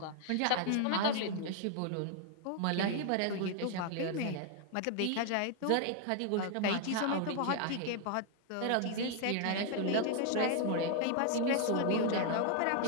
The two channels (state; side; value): different; both; correlation 0.00